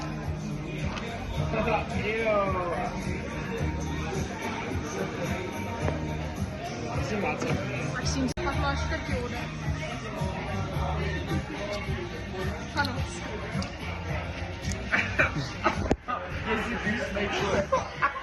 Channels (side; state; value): both; identical; correlation 1.00